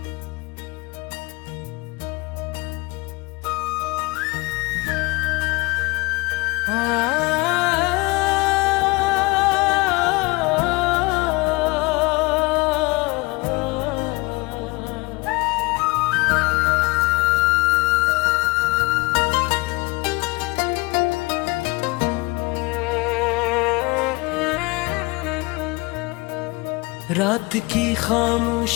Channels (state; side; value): quieter; right; 24.9 dB